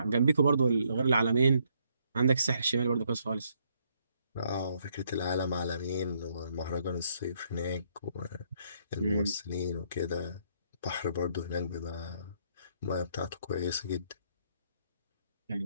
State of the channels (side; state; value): both; inverted; correlation -0.72